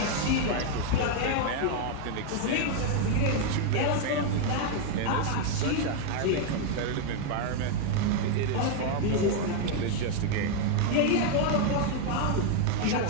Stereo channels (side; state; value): both; different; correlation 0.01